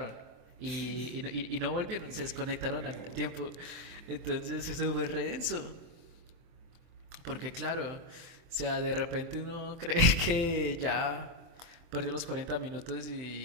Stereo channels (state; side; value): late; left; 24 ms